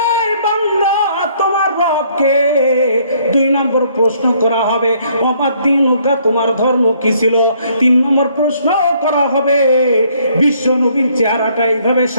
বান্দা তোমার রবকে। দুই নম্বর প্রশ্ন করা হবে, ওমা দীনুকা, তোমার ধর্ম কি ছিল। তিন নম্বর প্রশ্ন করা হবে, বিশ্ব নবীর চেহারাটা এইভাবে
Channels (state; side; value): inverted; both; correlation -0.65